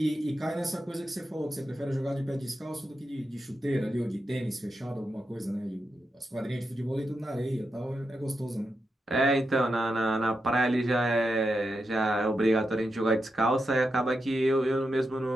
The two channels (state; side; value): normal; both; correlation 0.86